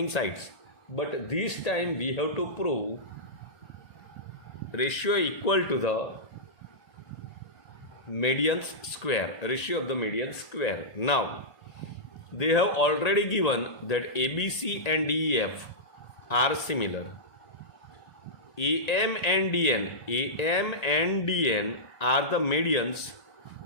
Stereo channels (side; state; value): right; late; 1.8 ms